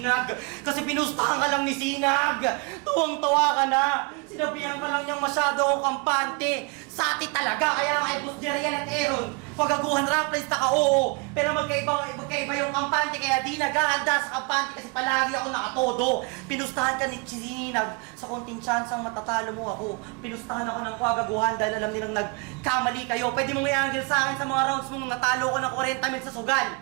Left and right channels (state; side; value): quieter; left; 30.3 dB